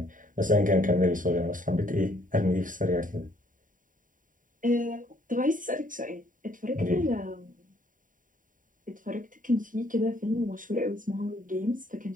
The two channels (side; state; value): left; late; 0.39 ms